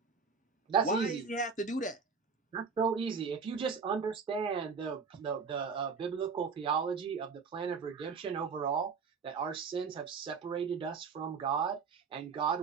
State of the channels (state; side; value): quieter; left; 5.4 dB